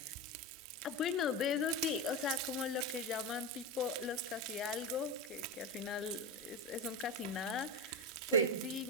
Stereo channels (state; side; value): normal; both; correlation 0.17